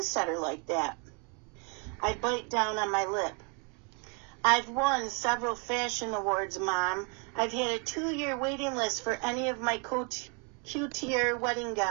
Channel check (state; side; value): quieter; left; 34.8 dB